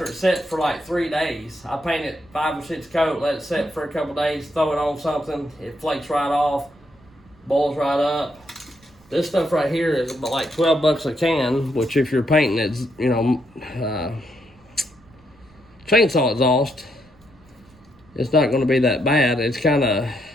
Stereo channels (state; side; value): noise; right; rumble, 28 dB below the sound